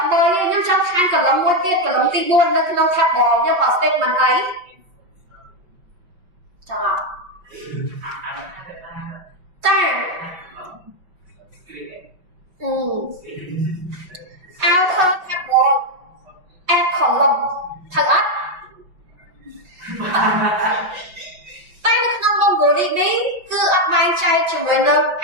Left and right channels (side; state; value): left; late; 5.5 ms